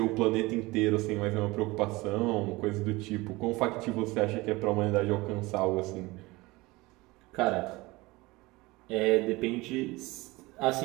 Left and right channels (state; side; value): quieter; left; 21.9 dB